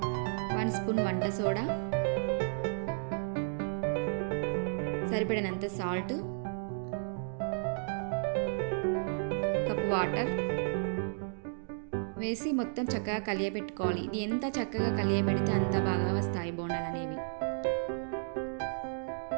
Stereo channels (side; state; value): left; silent; digital silence